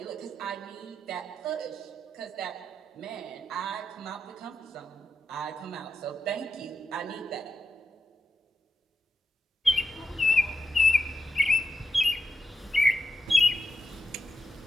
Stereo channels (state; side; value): normal; both; correlation 0.86